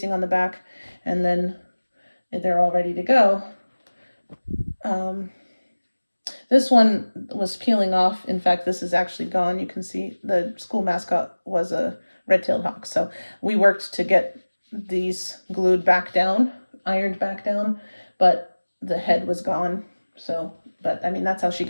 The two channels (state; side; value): inverted; both; correlation -1.00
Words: on the back, and then they're all ready to go. This one was peeling off. In fact, this is actually gone. You can see the school mascot was a red-tailed hawk. So we worked to get these glued back down, ironed back down, but the head was gone. So, but I mean, that's how she